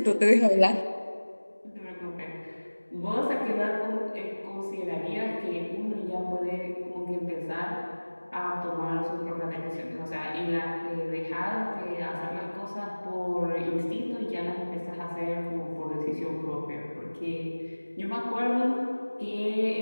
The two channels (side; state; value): both; inverted; correlation -1.00